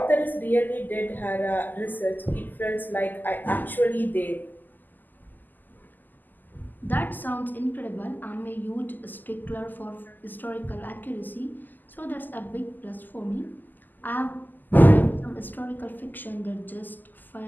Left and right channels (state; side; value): late; right; 0.087 ms